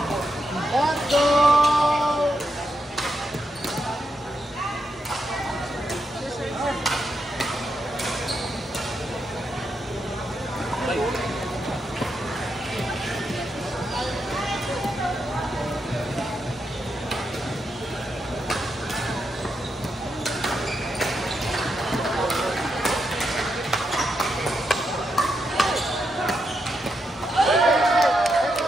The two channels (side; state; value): both; normal; correlation 0.83